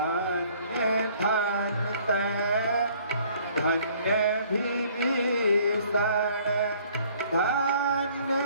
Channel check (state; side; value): inverted; both; correlation -0.58